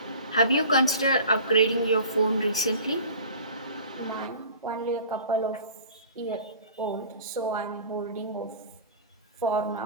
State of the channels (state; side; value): inverted; both; correlation -0.41